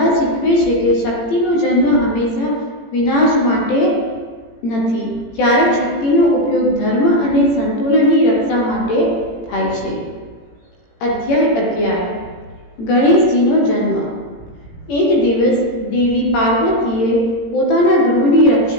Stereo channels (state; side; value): late; right; 18 ms